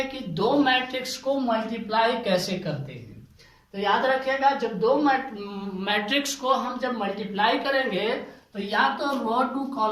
कि दो मैट्रिक्स को मल्टीप्लाई कैसे करते हैं। तो याद रखिएगा, जब दो मैट्रिक्स को हम जब मल्टीप्लाई करेंगे तो या तो रो टू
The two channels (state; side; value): identical; both; correlation 1.00